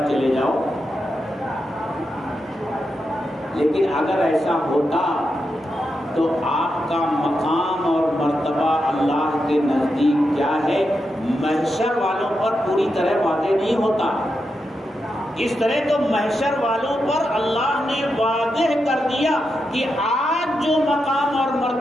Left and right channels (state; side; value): normal; both; correlation 0.86